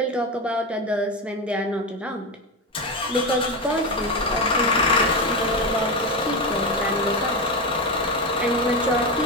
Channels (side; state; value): both; normal; correlation 0.15